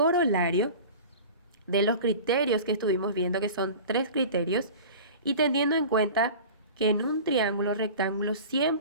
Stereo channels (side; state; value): both; inverted; correlation -0.37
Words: de los criterios que estuvimos viendo, que son 3 criterios, y teniendo en cuenta que en un triángulo rectángulo